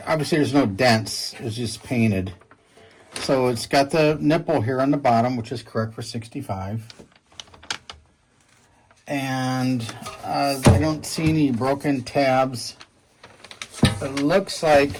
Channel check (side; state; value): both; identical; correlation 1.00